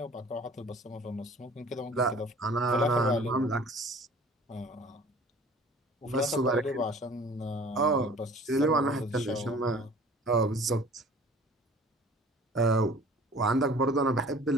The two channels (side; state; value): both; normal; correlation 0.48